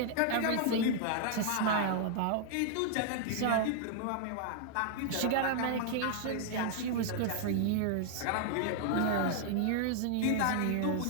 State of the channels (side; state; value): both; different; correlation -0.01